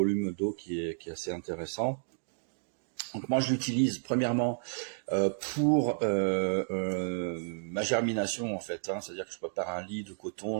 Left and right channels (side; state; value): left; silent; digital silence